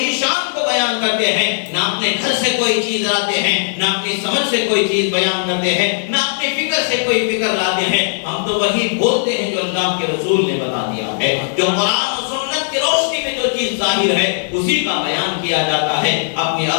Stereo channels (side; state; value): right; silent; 68 dB below the other